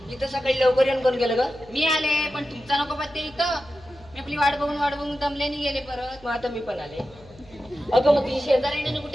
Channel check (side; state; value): left; noise; hum, 24 dB below the sound